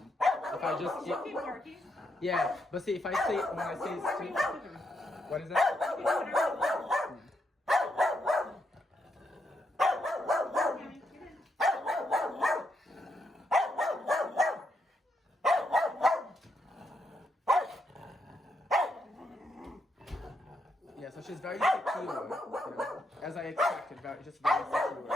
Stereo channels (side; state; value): both; normal; correlation 0.80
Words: If I just yeah, but see, if I say when I say sit, what is that? Yeah, so she's very secure, you know, as I expected, just very secure.